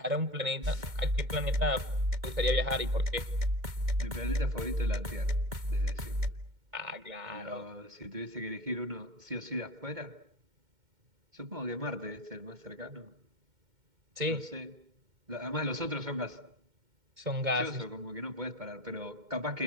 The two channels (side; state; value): left; late; 2.1 ms